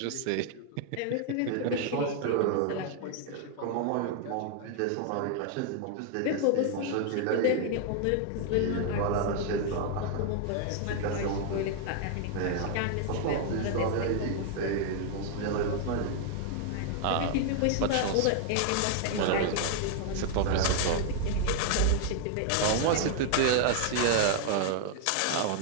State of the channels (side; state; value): both; different; correlation 0.00